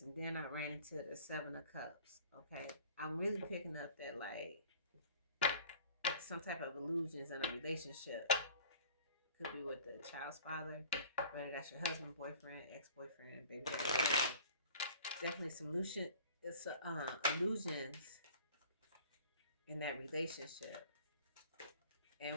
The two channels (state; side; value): inverted; both; correlation -0.47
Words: and then I ran into the Seven of Cups. Okay, I'm really picking up that, like, some type of illusions in a relationship. Could be with the child's father, whether that's your husband, boyfriend, ex-boyfriend, baby daddy, whatever. Definitely some illusions in that relationship.